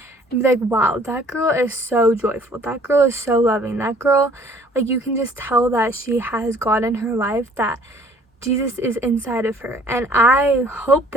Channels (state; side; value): normal; both; correlation 0.56